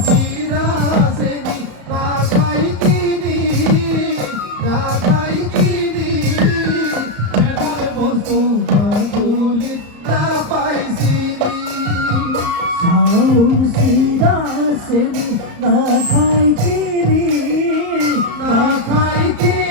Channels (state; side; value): late; left; 34 ms